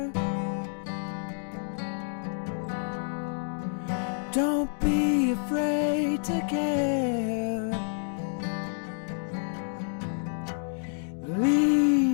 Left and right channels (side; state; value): right; silent; 59 dB below the other